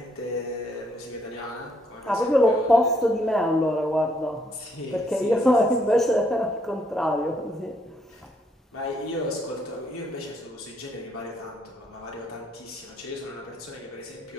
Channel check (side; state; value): both; normal; correlation 0.71